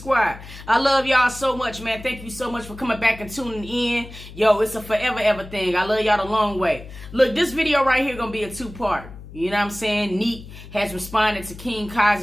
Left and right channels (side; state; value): left; noise; hum, 15 dB below the sound